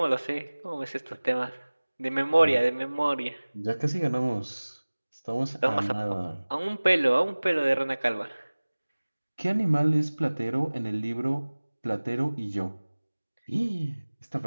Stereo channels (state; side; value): inverted; both; correlation -1.00